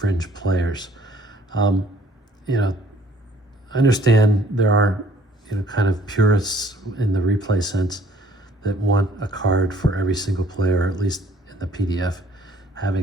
players. You know, I understand there are, you know, kind of purists in the replay sense that want a card for every single player, or at least in the PDF,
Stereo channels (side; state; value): both; normal; correlation 0.59